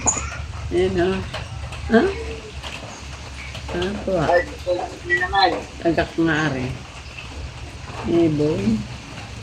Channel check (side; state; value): both; identical; correlation 1.00